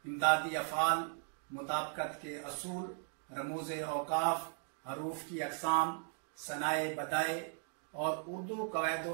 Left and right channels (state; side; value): silent; left; 53 dB below the other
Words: इमदादी अफ़ाल, मुताबकत के असूल, रमूज़े औकाफ, हरूफ की अक़साम, सनाए बदाए और उर्दू कवायद